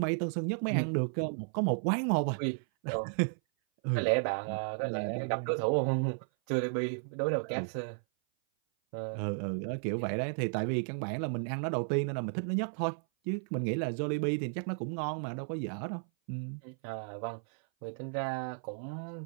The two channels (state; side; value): silent; left; 55 dB below the other